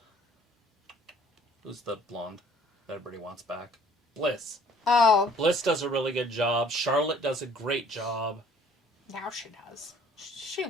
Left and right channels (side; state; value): both; normal; correlation 0.56